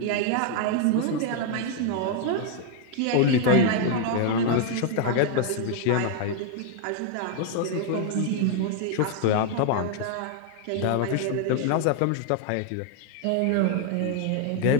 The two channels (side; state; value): both; different; correlation 0.00